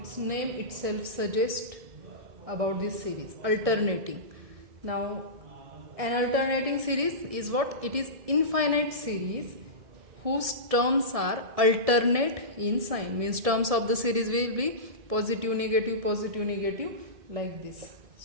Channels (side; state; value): left; late; 1.7 ms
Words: name itself suggests about this series, alternating. Now, an alternating series is what? It is infinite series whose terms are alternate in sign. Means terms of the series will be positive, negative, like this.